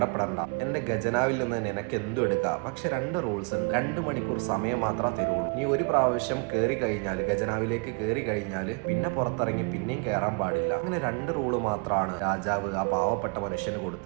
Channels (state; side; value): quieter; left; 35.7 dB